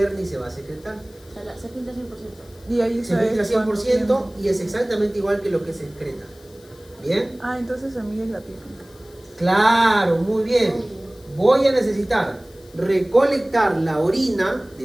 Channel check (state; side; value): noise; left; hiss, 27 dB below the sound